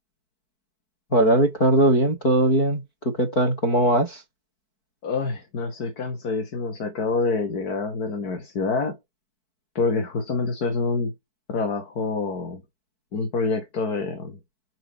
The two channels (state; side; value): late; right; 4.6 ms